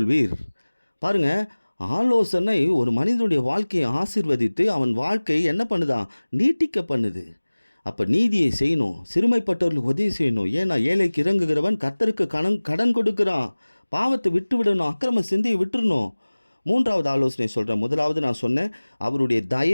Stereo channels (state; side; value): inverted; both; correlation -1.00